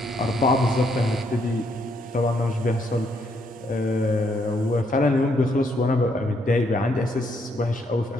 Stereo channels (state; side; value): normal; both; correlation 0.73